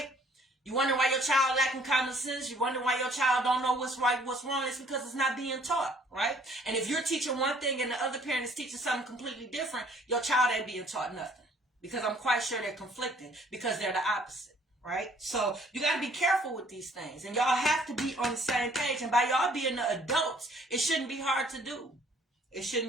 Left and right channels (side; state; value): both; normal; correlation 0.59